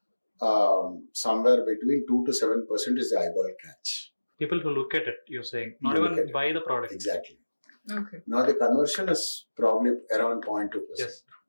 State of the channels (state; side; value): inverted; both; correlation -1.00